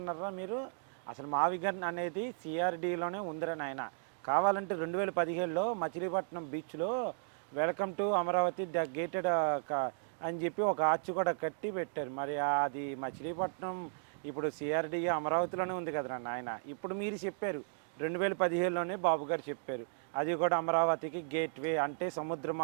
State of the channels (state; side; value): silent; left; digital silence